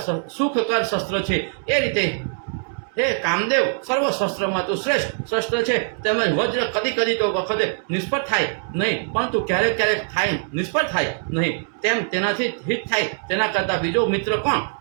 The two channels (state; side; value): silent; left; digital silence